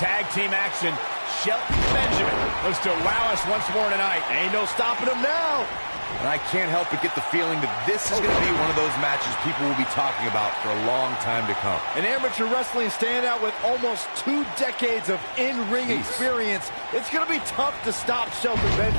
team action, Shelton Benjamin looks to wow us once more tonight. Ain't no stopping him now. And I can't help but get the feeling that this is going to be one of those matches people will be talking about for a long time to come. An amateur wrestling standout with almost 2 decades of in-ring experience. It's going to be tough to stop Shelton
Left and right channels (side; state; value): both; inverted; correlation -1.00